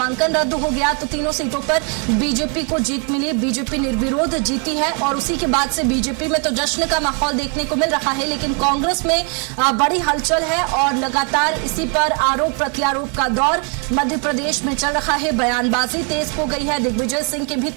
रद्द हो गया तो तीनों सीटों पर बीजेपी को जीत मिली। बीजेपी निर्विरोध जीती है और उसी के बाद से बीजेपी में तो जश्न का माहौल देखने को मिल रहा है, लेकिन कांग्रेस में बड़ी हलचल है और लगातार इसी पर आरोप प्रत्यारोप का दौर मध्य प्रदेश में चल रहा है। बयानबाजी तेज हो गई है। दिग्विजय सिंह के भी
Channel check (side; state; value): left; quieter; 38.4 dB